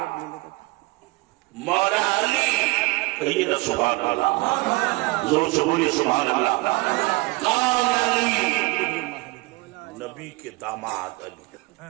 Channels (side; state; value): left; quieter; 23.9 dB